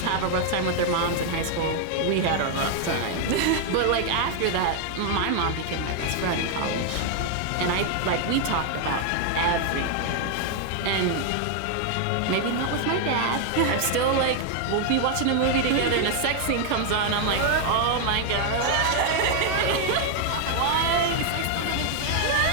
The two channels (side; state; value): both; different; correlation 0.00